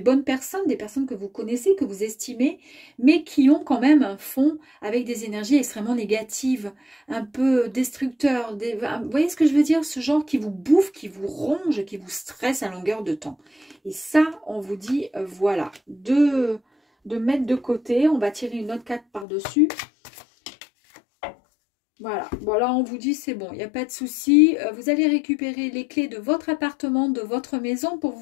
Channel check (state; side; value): drops out; right; at 19.2 s